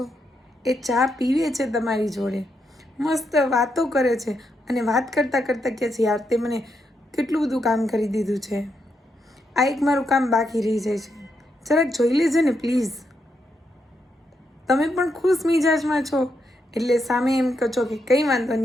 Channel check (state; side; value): normal; both; correlation 0.81